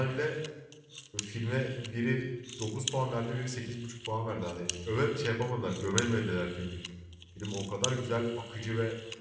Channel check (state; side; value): identical; both; correlation 1.00